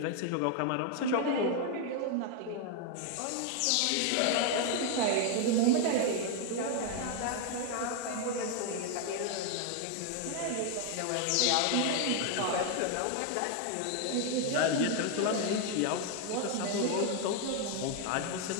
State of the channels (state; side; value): different; both; correlation 0.01